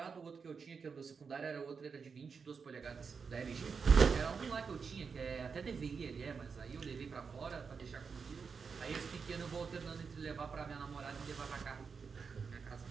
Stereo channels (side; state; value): left; quieter; 5.6 dB